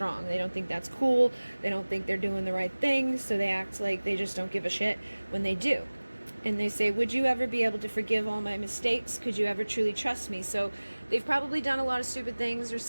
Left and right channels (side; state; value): both; inverted; correlation -1.00